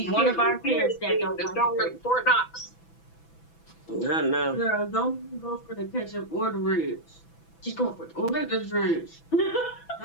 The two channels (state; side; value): late; right; 6.0 ms